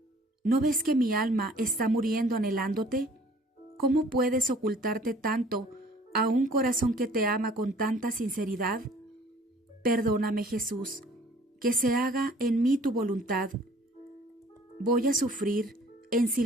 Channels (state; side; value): normal; both; correlation 0.54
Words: ¿no ves que mi alma está muriendo anhelándote? ¿Cómo puedes ocultarte tanto a un corazón que te ama con tanta sinceridad? Perdóname, Jesús, que se haga en mí tu voluntad. Voy a sufrir en